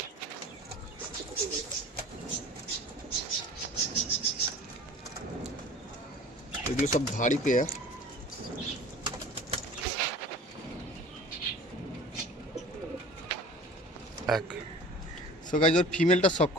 এগুলো সব ভারী পেয়ার। সো গাইস, ওর ফিমেলটা শক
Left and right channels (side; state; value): both; normal; correlation 0.42